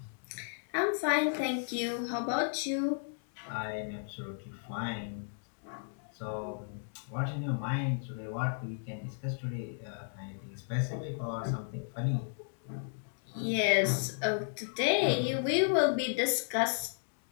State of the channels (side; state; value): right; silent; digital silence